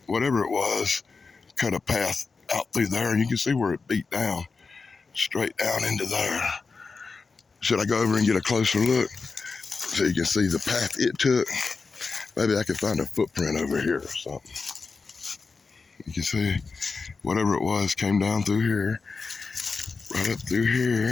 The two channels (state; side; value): quieter; right; 4.5 dB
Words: whatever it was, cut a path out through there. And you can see where it beat down, straight down into there. Should I go over and get a closer look so you can see the path it took? Maybe I could find a footprint over here or something. You can see whatever it was came down through here, right up through